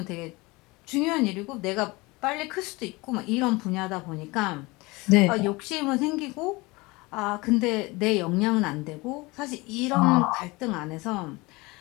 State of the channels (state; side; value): quieter; right; 23.6 dB